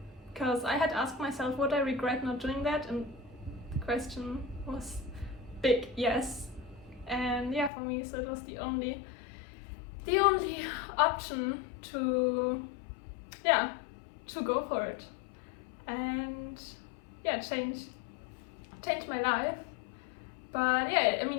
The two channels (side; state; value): right; drops out; at 7.7 s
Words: because I had asked myself, would I regret not doing that? And the question was big yes. And yeah, for me, so it was the only option to go for it and change my life. But yeah, I